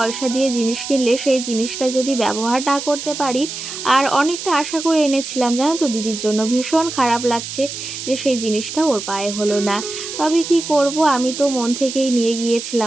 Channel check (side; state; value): right; noise; hiss, 8 dB below the sound